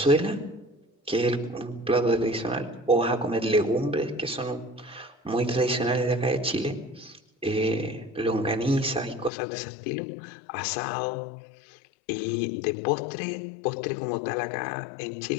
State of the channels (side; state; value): right; drops out; at 9.3 s